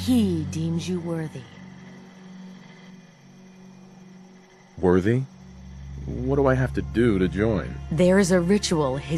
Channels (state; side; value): identical; both; correlation 1.00